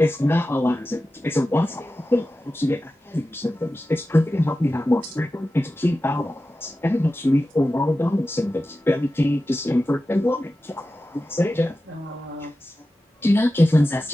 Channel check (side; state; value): both; normal; correlation 0.93